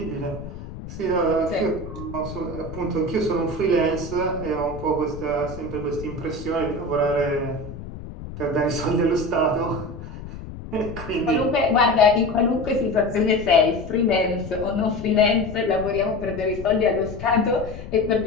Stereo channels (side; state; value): left; noise; rumble, 12 dB below the sound